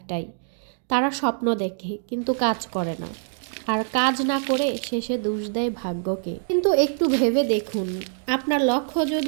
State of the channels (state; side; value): silent; left; digital silence